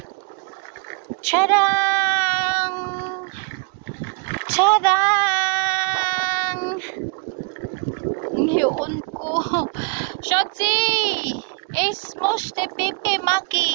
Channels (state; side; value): quieter; left; 34.3 dB